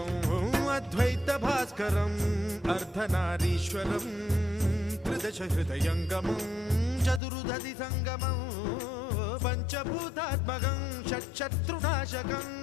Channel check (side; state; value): right; drops out; at 7.2 s